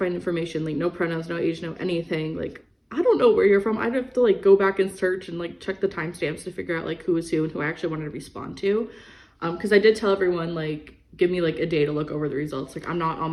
information, like no pronouns, no age, no anything, like I don't know where you're from. I'd have to like go back and search and like check the timestamps to figure out like who was who and who I actually wanted to respond to. Because I did tell everyone, like, give me like a day to look over the results. Like, I'm not on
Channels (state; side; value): identical; both; correlation 1.00